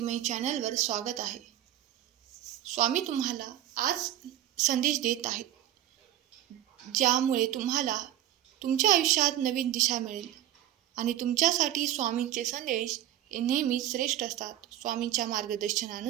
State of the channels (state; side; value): quieter; left; 12.4 dB